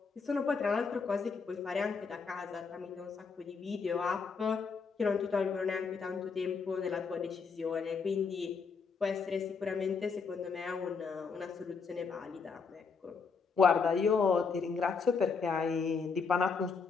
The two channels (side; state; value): right; quieter; 5.3 dB